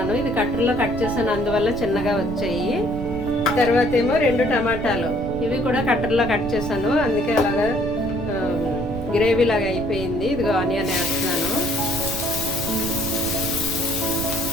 ఇది కట్టర్లో కట్ చేశాను, అందువల్ల చిన్నగా వచ్చాయి. తర్వాత ఏమో 2 టమాటాలు, ఇవి కూడా కట్టర్లో కట్ చేశాను, అందుకే అలాగా గ్రేవీ లాగా అయిపోయింది. ఇదిగో ఆనియన్ వేస్తున్నాను.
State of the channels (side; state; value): right; noise; rumble, 8 dB below the sound